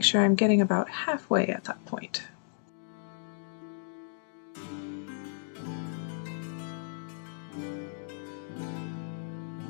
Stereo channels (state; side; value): silent; right; digital silence